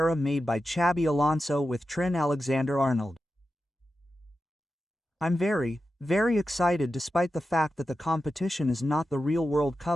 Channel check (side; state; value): both; normal; correlation 0.91